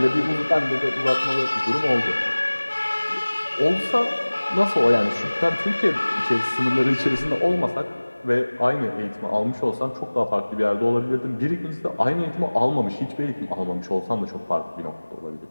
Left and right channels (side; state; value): both; inverted; correlation -1.00